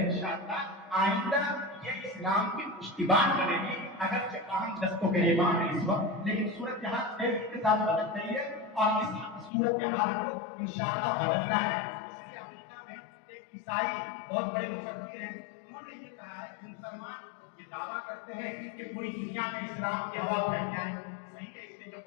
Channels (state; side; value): drops out; right; at 9.5 s